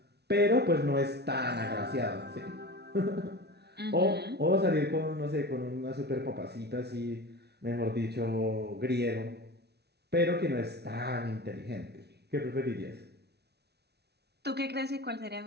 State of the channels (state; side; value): late; left; 0.49 ms